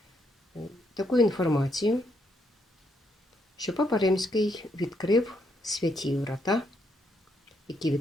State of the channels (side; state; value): both; normal; correlation 0.75